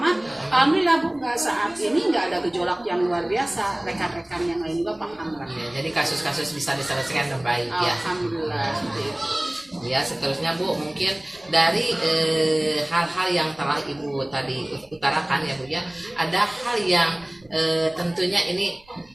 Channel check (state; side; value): noise; right; rumble, 30 dB below the sound